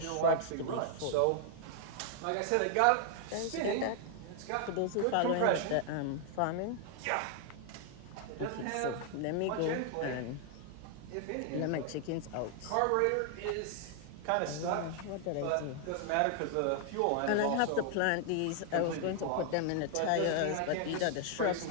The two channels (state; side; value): different; both; correlation 0.00